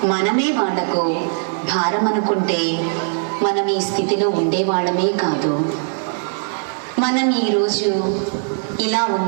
మనమే వాళ్లకు భారం అనుకుంటే మనం ఈ స్థితిలో ఉండేవాళ్ళమే కాదు. మనం ఈరోజు ఇలా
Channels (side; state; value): left; silent; digital silence